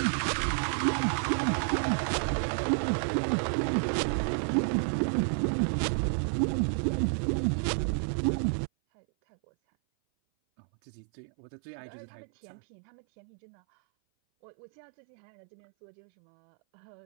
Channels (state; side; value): silent; left; 57 dB below the other